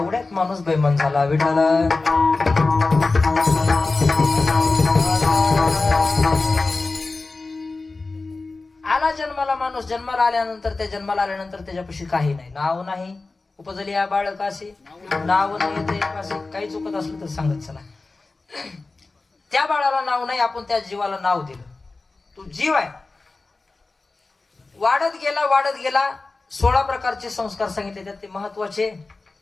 माणूस बेमान झाला. विठाला आला जन्माला माणूस. जन्माला आल्यानंतर त्याच्यापाशी काही नाही, नाव नाही. उपजली या बाळकाशी, नाव नाही ते काही चुकत असलं तर सांगत चला. त्या बाळाला नाव नाही, आपण त्या जीवाला नाव दिलं. तू जीव आहे. वाढत गेला 16 प्रकारचे संस्कार सांगितले. त्यात ते महत्वाचे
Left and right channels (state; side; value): quieter; right; 3.6 dB